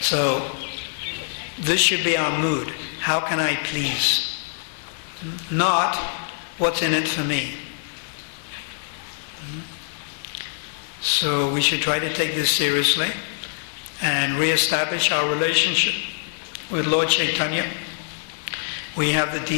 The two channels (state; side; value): silent; right; digital silence